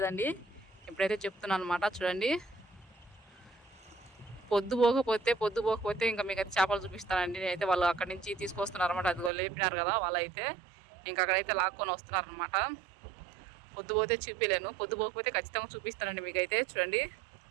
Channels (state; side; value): drops out; left; at 9.3 s